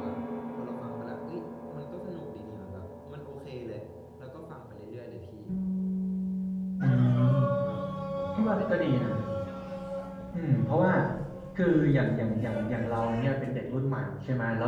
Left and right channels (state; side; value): identical; both; correlation 1.00